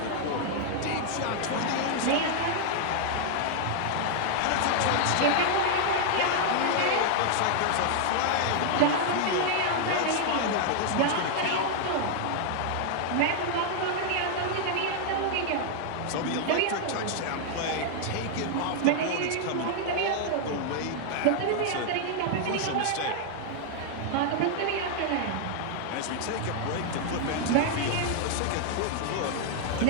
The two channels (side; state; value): both; different; correlation -0.01